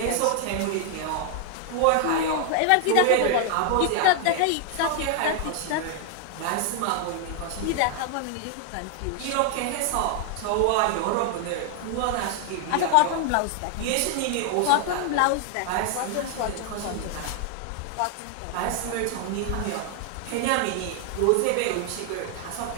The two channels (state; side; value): different; both; correlation 0.00